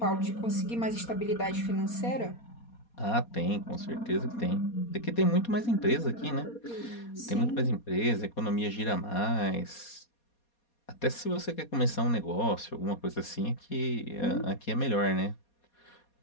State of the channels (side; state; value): right; late; 4.2 ms